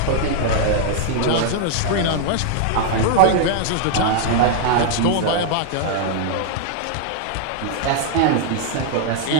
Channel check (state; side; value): different; both; correlation 0.00